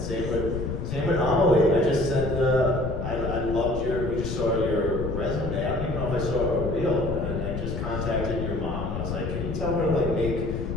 same with Amelie. I just said, I loved we just saw your resume. I don't even know if I saw a reel. And I just contacted your mom, and I was like, can you tell her to like make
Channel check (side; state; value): left; noise; rumble, 4 dB below the sound